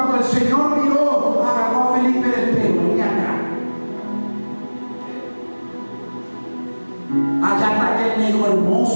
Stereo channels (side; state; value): both; inverted; correlation -1.00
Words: el Señor miró, agarró a Felipe del pelo, venía acá. Allá está aquel negro